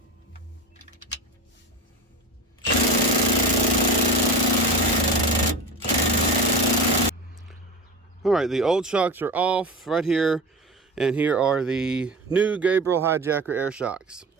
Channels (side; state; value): both; normal; correlation 0.28